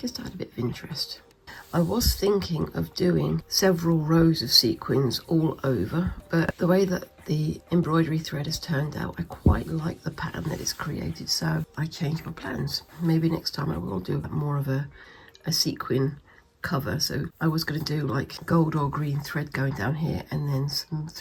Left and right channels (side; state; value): both; identical; correlation 1.00